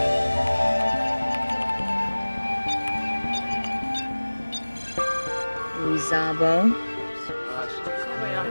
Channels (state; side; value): inverted; both; correlation -1.00